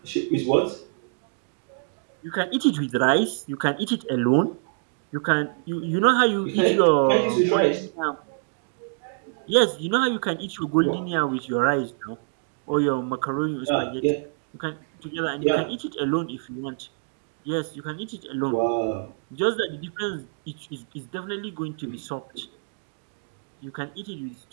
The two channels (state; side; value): silent; left; digital silence